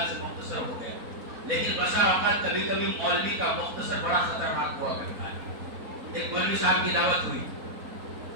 سے مختصر ہو گیا، لیکن بسا اوقات کبھی کبھی مولوی کا مختصر بڑا خطرناک ہوا کرتا ہے۔ ایک مولوی صاحب کی دعوت ہوئی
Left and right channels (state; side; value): late; left; 4.1 ms